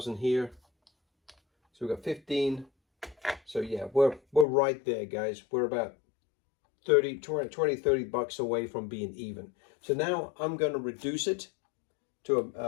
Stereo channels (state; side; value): drops out; right; at 4.5 s